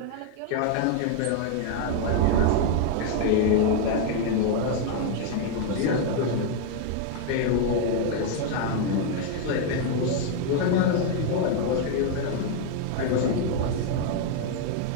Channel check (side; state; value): both; different; correlation 0.00